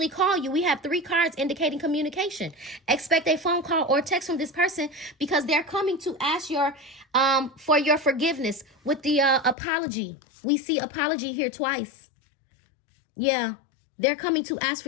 call you. We have 3 cards indicating communication. Expect a phone call or text from this person because they're coming to ask for your forgiveness with the apology. We see apology here twice. Yeah, they're coming to ask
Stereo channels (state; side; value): drops out; right; at 9.6 s